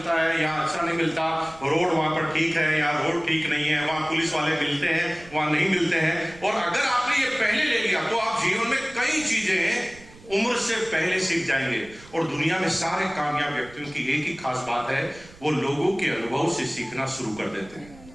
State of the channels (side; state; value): right; noise; rumble, 21 dB below the sound